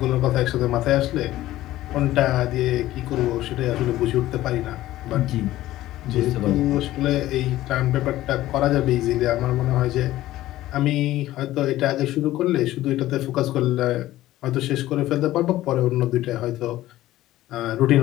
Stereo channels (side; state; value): right; quieter; 15.2 dB